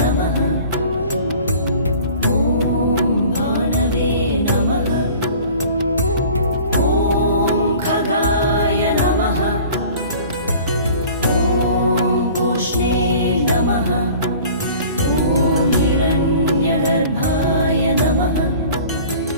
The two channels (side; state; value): both; inverted; correlation -0.46